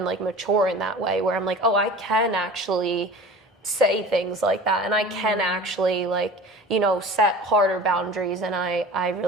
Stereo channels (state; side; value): normal; both; correlation 0.39